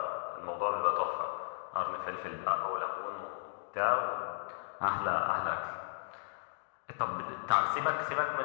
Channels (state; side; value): silent; right; digital silence